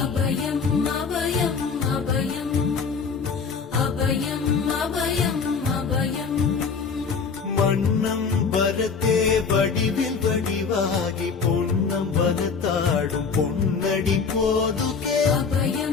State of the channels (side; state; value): right; quieter; 5.4 dB